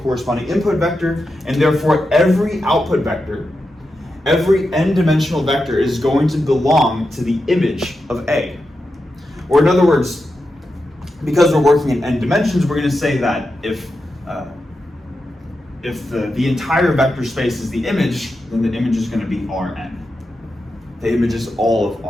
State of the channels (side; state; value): both; normal; correlation 0.89